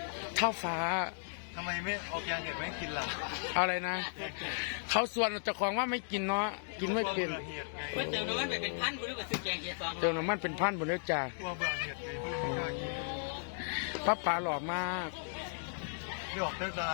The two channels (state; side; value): silent; right; digital silence